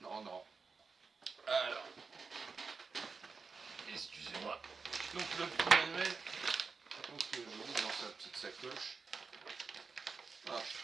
Non. Alors, excusez-moi. Donc le petit manuel, donc je mets dans sa petite sacoche. Hop.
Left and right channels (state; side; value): quieter; left; 4.8 dB